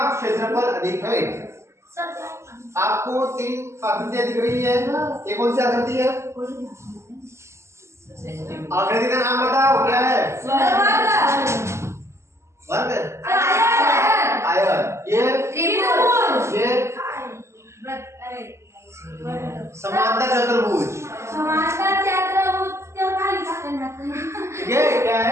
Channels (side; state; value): left; late; 0.13 ms